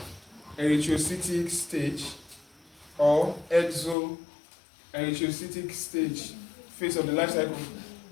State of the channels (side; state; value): right; drops out; at 4.0 s